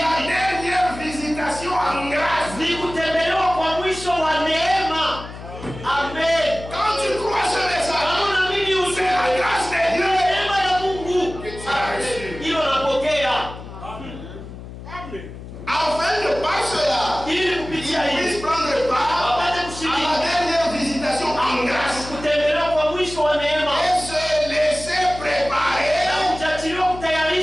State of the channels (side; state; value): left; noise; hum, 13 dB below the sound